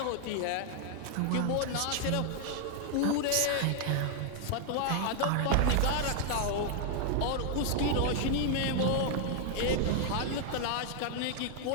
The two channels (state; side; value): different; both; correlation 0.00